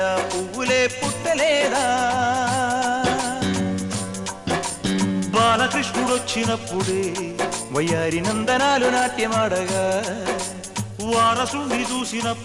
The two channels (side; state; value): both; identical; correlation 1.00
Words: పువ్వులే పుట్టలేదా బాలకృష్ణుడొచ్చినప్పుడే వయ్యారి నందనాలు నాట్యమాడగా వారసుని